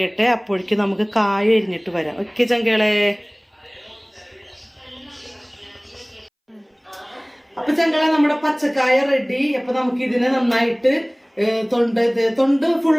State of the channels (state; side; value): identical; both; correlation 1.00